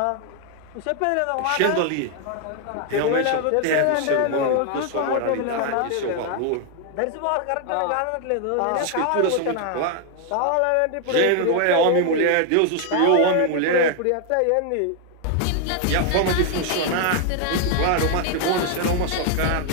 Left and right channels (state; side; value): different; both; correlation 0.00